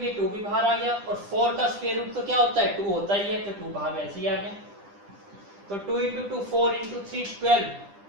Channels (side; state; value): left; late; 10 ms